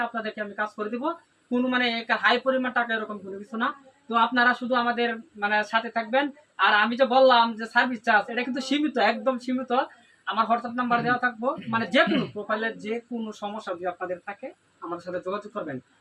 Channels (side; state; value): both; identical; correlation 1.00